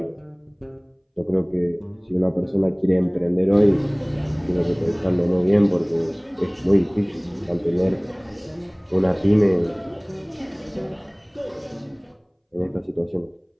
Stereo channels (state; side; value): identical; both; correlation 1.00